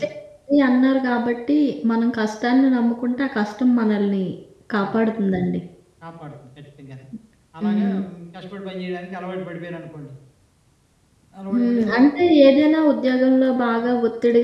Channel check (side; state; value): both; identical; correlation 1.00